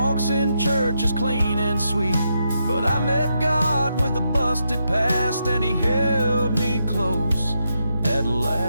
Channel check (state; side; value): inverted; both; correlation -0.82